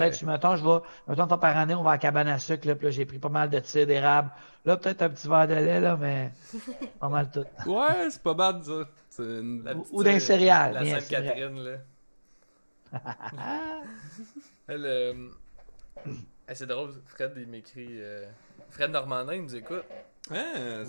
si mettons, une fois par année, on va à la cabane à sucre, là, puis là, j'ai pris pas mal de cidre d'érable. Là, peut-être un petit verre de lait, là, mais pas mal tout. Ouais, c'est pas bad, ça. C'est une... La petite, Ou d'un céréales. La bien, c'est vrai. Sainte-Catherine, là. Elle, c'est drôle, Fred, il m'écrit. Fred Normandin, il nous écoute. Hein,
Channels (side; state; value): both; inverted; correlation -1.00